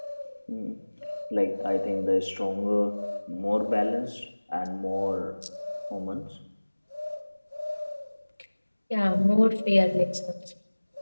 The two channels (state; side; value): inverted; both; correlation -1.00